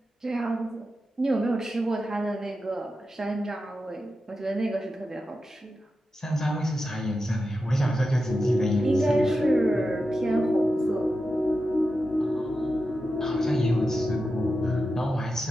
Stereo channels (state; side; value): normal; both; correlation 0.90